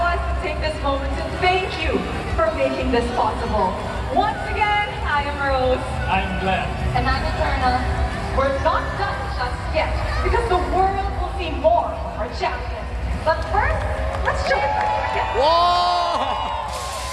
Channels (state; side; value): identical; both; correlation 1.00